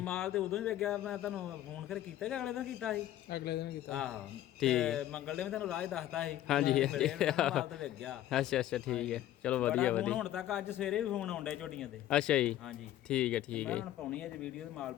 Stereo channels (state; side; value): quieter; right; 13.1 dB